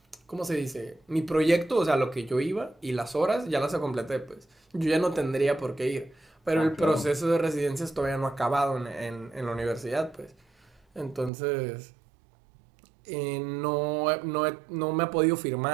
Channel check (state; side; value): drops out; left; at 11.3 s